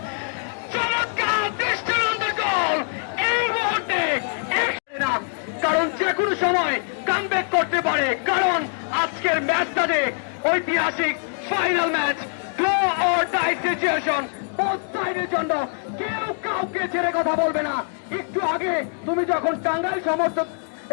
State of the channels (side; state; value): right; silent; 57 dB below the other